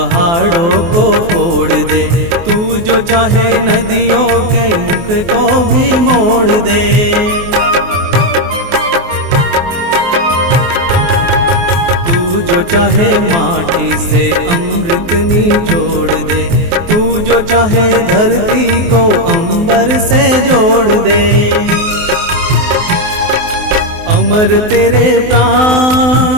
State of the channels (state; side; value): late; left; 24 ms